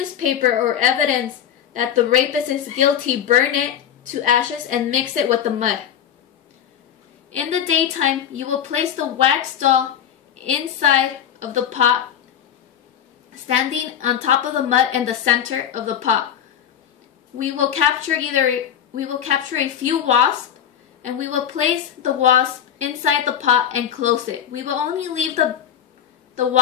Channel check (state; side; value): quieter; right; 9.5 dB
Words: or evidence that the rapist is guilty, burn it to ashes and mix it with the mud. In the daytime, you will place the wax doll inside of the pot, standing on top of the mud in the center of the pot. We will capture a few wasps, and we will place the wasp inside the pot and close it. We will only leave the